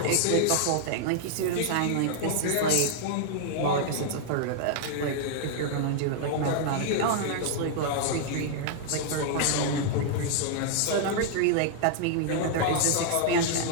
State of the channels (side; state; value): both; different; correlation -0.01